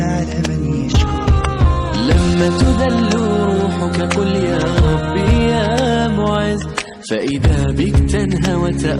من يشكر. لما تذل روحك قل يا ربي يا معز، فإذا بك تنهى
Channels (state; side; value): identical; both; correlation 1.00